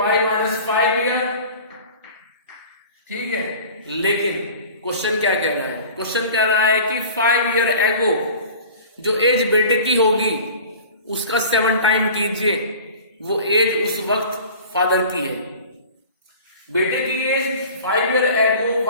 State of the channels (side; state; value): both; inverted; correlation -0.42